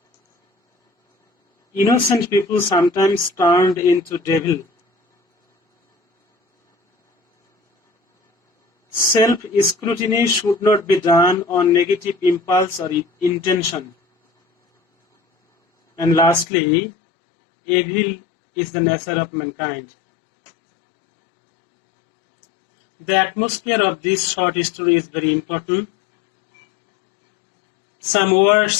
Innocent people sometimes turned into devil. Self-scrutiny should not be done on negative impulse or intention. And lastly, evil is the nature of mankind. The atmosphere of this short story is very important. Some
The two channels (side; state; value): right; drops out; at 16.4 s